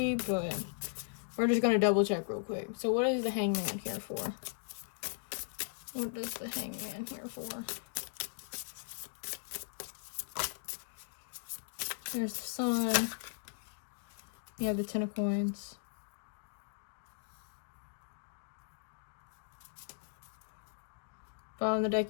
But we're just going to double check real quick. So what is the Hanged Man here for? What is the Hanged Man here for? There's the Sun. You have the 10 of Coins. Bottom of the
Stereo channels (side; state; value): right; silent; digital silence